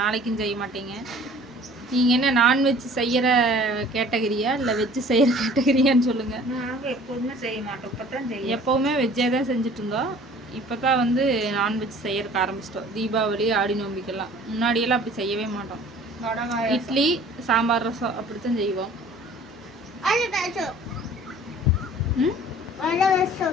நாளைக்கும் செய்ய மாட்டீங்க. நீங்கள் என்ன நான்வெஜ் செய்கிற கேட்டகரியா இல்லை வெஜ்ஜு செய்கிற கேட்டகரியான்னு சொல்லுங்கள். எப்போதுமே செய்ய மாட்டோம். எப்போவுமே வெஜ்ஜே தான் செஞ்சுட்டு இருந்தோம். இப்போ தான் வந்து நான்வெஜ் செய்யறதுக்கு ஆரம்பிச்சிட்டோம். தீபாவளி ஆடி நோம்பிக்கெல்லாம். முன்னாடியெல்லாம் அப்படி செய்யவே மாட்டோம். இட்லி சாம்பார் ரசம் அப்படித்தான் செய்வோம்.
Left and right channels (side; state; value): both; normal; correlation 0.49